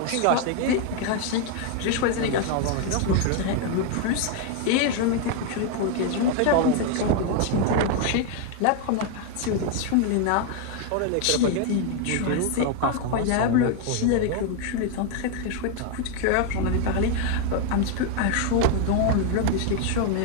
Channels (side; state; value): both; different; correlation 0.01